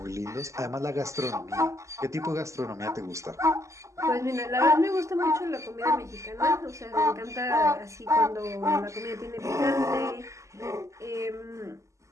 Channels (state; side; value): late; left; 0.15 ms